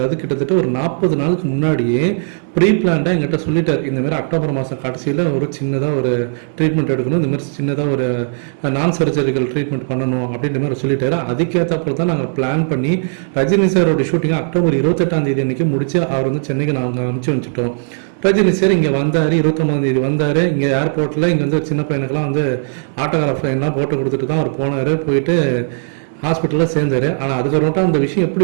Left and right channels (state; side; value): silent; left; digital silence